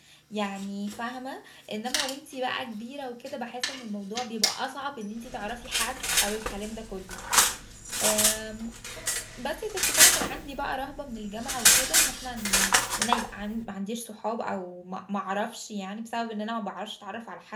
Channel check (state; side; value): identical; both; correlation 1.00